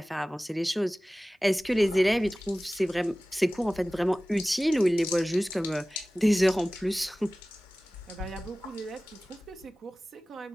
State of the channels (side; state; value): both; normal; correlation 0.97